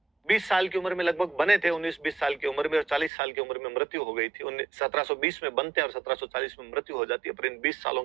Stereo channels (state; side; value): drops out; left; at 3.1 s